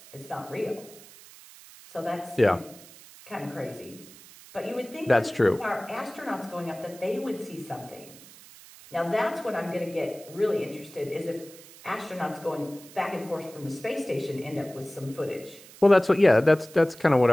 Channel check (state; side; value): noise; right; hiss, 20 dB below the sound